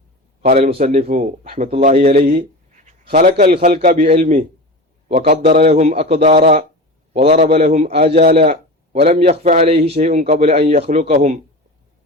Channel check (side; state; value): both; normal; correlation 0.29